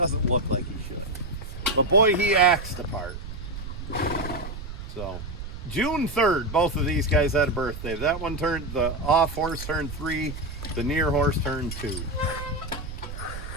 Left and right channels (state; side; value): noise; right; rumble, 9 dB below the sound